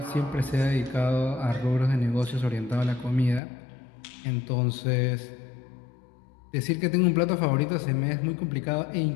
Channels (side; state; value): right; drops out; at 3.4 s